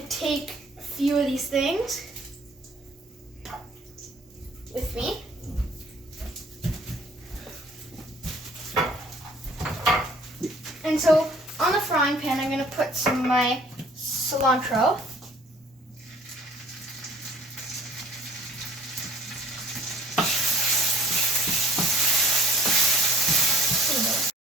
take a few of these things with me. And so on the frying pan, I'm going to put some of my cilantro.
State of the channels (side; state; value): both; normal; correlation 0.55